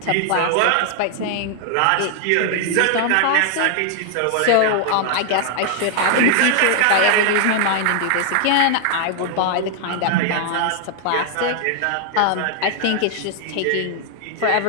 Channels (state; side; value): different; both; correlation 0.00